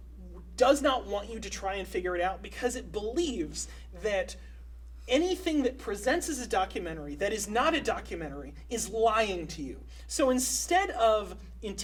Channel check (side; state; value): both; identical; correlation 1.00